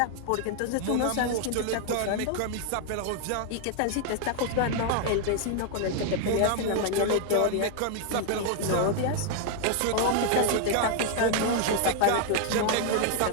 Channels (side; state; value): both; different; correlation 0.00